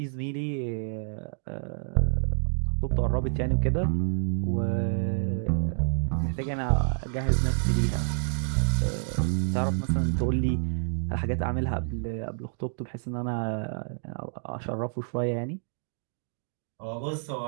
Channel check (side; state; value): left; silent; digital silence